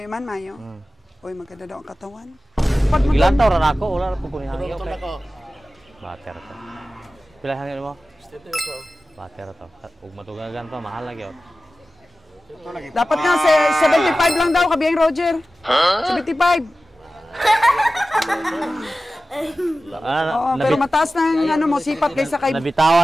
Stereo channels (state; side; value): normal; both; correlation 0.95